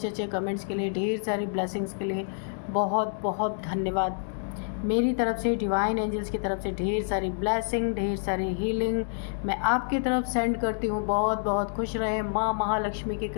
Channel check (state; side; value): silent; right; digital silence